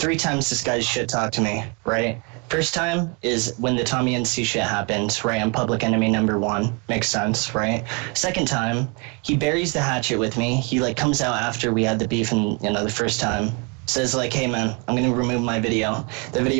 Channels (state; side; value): quieter; left; 33.0 dB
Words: times this guy shit talked to me, right? First time is when the Tommy NC shit happened, right? I'm public enemy number 1. Makes sense, right? Second time, he buries the hatchet with me. He like comes out after we had the beef and the first time. Says like, hey man, I'm gonna remove my video. The